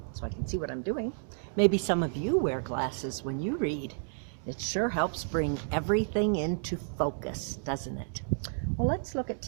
so I can see what I'm doing. Maybe some of you wear glasses when you read. It sure helps bring everything into focus, doesn't it? Well, let's look at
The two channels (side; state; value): left; silent; digital silence